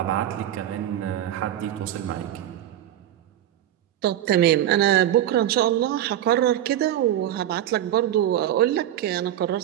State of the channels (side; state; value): left; quieter; 12.1 dB